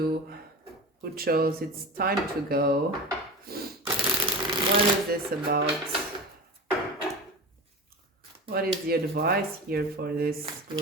who chose it's time to go. What is this about? What is the advice here for this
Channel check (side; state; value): both; normal; correlation 0.30